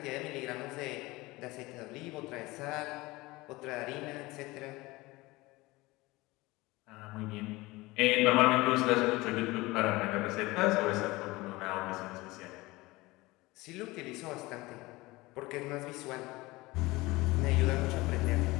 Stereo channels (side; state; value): right; quieter; 21.1 dB